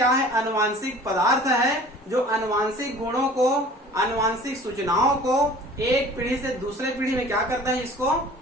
है, आनुवांशिक पदार्थ है, जो आनुवांशिक गुणों को, आनुवांशिक सूचनाओं को एक पीढ़ी से दूसरे पीढ़ी में क्या करता है, इसको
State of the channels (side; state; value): both; normal; correlation 0.47